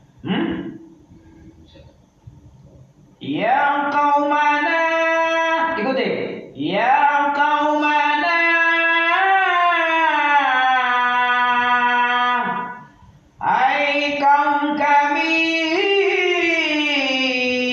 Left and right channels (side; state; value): both; identical; correlation 1.00